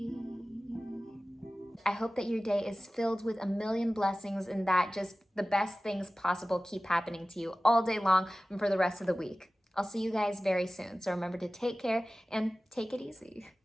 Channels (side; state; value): both; normal; correlation 0.97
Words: I hope that your day is filled with a million blessings and that just the best things possible keep happening to you all day long and for the rest of the week. I'll see you guys very soon. So remember to take care and take it easy.